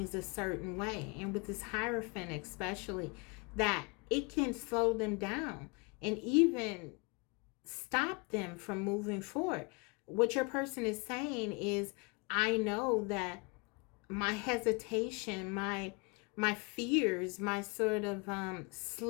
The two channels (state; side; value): quieter; right; 30.1 dB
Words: a certain way, and with this Hierophant especially, that it can slow them down and even stop them from moving forward. What your person is saying is, I know that my hesitation, my fears, my sort of